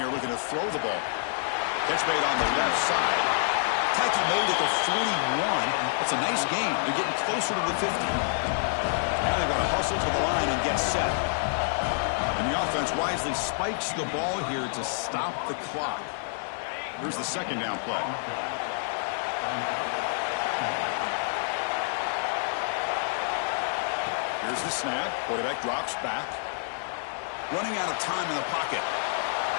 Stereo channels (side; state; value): right; silent; 59 dB below the other